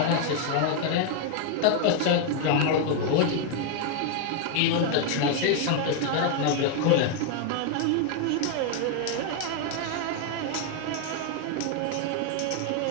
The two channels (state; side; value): different; both; correlation 0.00